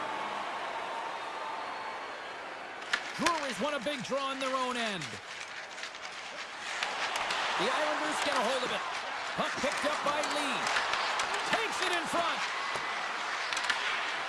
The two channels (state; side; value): identical; both; correlation 1.00